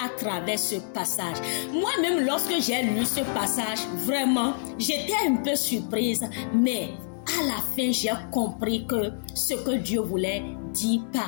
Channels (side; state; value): right; silent; digital silence